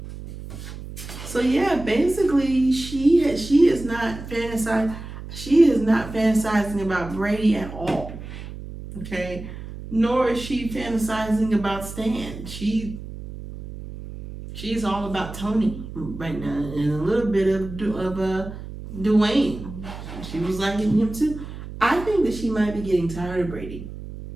So yeah, basically she is not fantasizing about Brady at all. Okay? Nor is she fantasizing about Stan. She's all about Tony right now, and a little bit of Dwayne. She was liking him too. I think that she might be getting tired of Brady.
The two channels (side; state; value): right; noise; hum, 11 dB below the sound